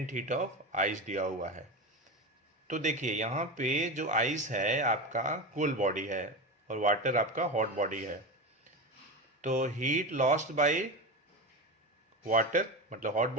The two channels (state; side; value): normal; both; correlation 0.21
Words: heat of ice दिया हुआ है। तो देखिए यहाँ पे जो आइस है आपका कोल्ड बॉडी है, और वाटर आपका हॉट बॉडी है, तो हीट लॉस्ट बाय वाटर मतलब हॉट